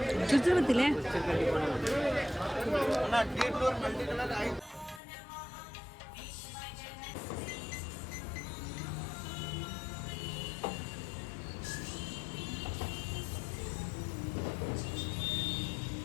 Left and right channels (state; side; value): drops out; right; at 5.0 s